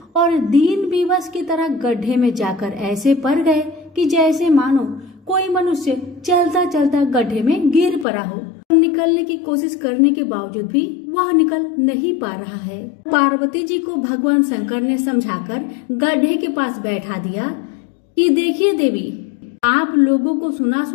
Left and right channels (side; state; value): right; drops out; at 8.1 s